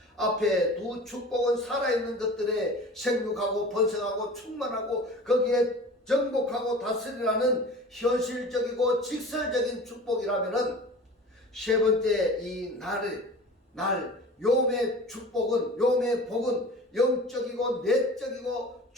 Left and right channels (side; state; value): both; normal; correlation 0.39